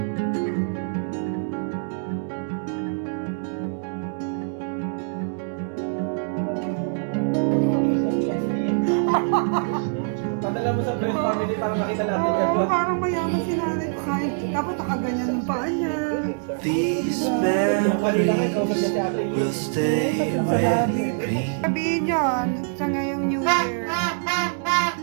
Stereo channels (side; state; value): left; silent; digital silence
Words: Padala mo sa friend family para makita natin Oo, parang mayaman si nanay ko kahit dapat nakaganyan yung paa niya. These memories will stay with me. Sabihin yun sa ngayong New Year.